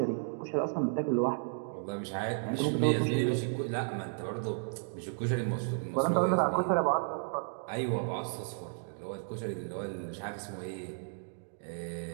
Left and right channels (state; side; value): silent; left; digital silence